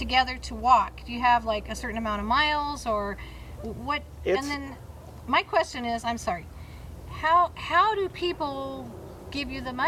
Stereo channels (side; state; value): both; identical; correlation 1.00